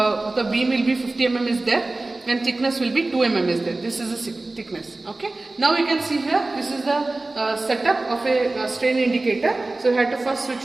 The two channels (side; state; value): left; quieter; 3.1 dB